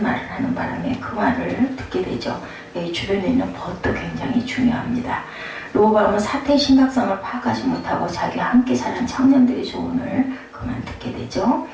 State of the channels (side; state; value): both; identical; correlation 1.00